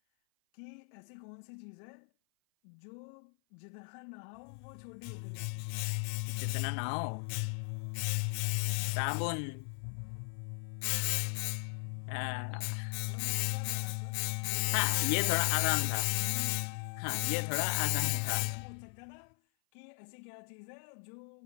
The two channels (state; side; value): silent; right; 53 dB below the other